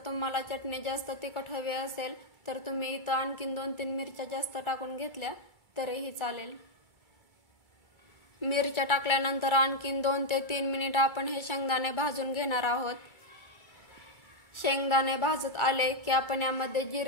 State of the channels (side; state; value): right; late; 2.3 ms